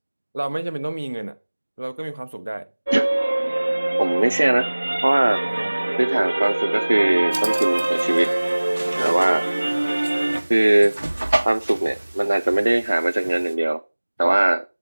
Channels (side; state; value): both; inverted; correlation -1.00